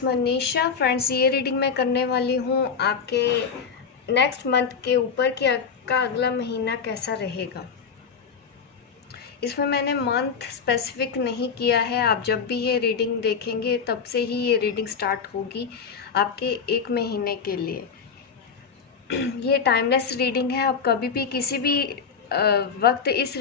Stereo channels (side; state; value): right; quieter; 6.1 dB